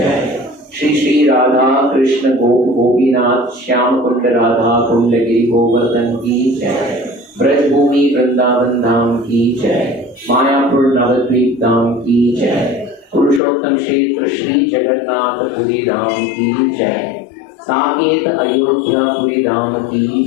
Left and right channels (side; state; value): right; drops out; at 13.4 s